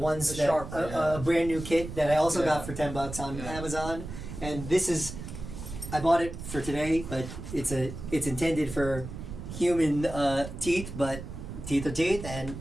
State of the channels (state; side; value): noise; right; rumble, 9 dB below the sound